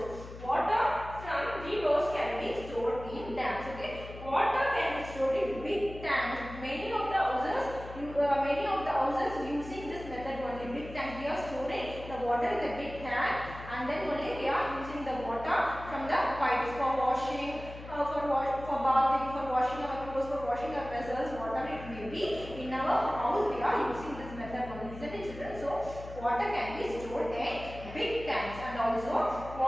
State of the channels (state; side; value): noise; left; hum, 13 dB below the sound